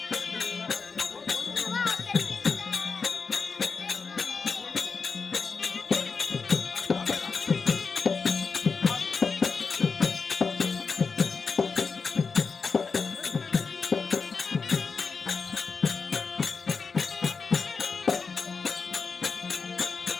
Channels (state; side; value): quieter; right; 5.0 dB